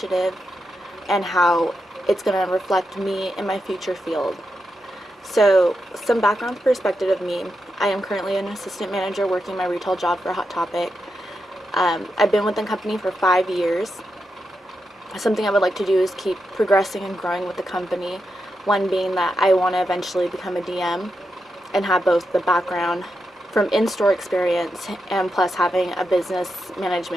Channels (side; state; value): both; normal; correlation 0.86